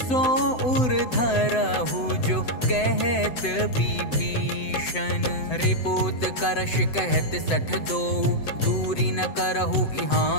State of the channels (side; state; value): right; late; 7.9 ms